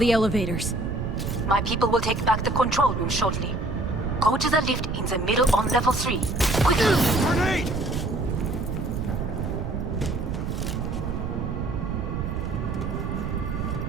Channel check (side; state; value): right; noise; rumble, 3 dB below the sound